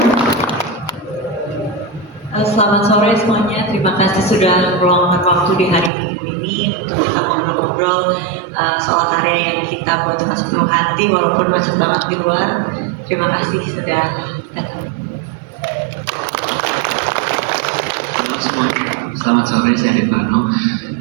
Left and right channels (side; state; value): left; drops out; at 5.9 s